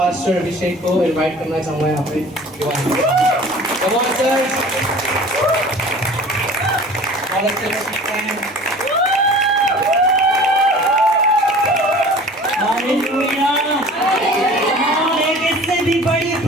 अभिषेक को इनवाइट करना चाहूँगा यहाँ पे। कमान सर बहुत अच्छे से सीखते हैं। हालेलुया। एक इससे भी बड़ी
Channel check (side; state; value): both; normal; correlation 0.44